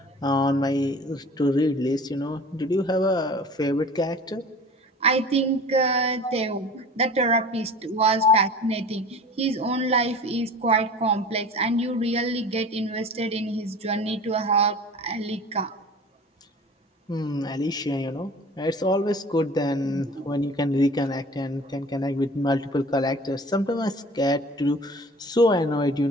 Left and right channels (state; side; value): normal; both; correlation 0.42